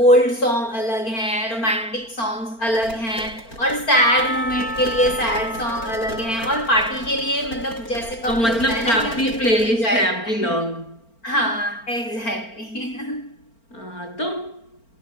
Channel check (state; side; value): late; right; 4.4 ms